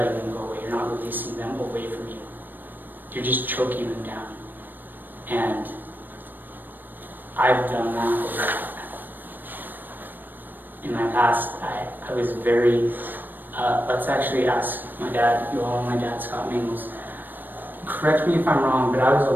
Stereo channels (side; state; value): left; late; 0.091 ms